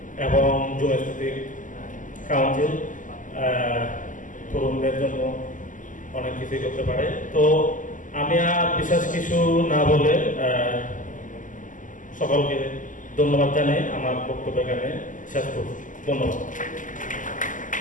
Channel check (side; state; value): right; late; 0.38 ms